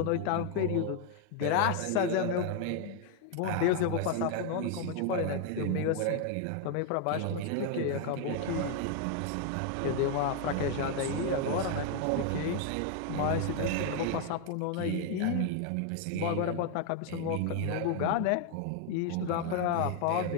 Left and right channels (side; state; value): both; different; correlation 0.01